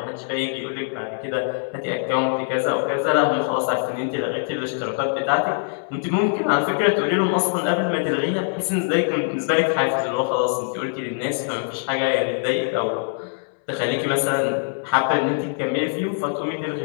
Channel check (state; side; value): silent; right; 62 dB below the other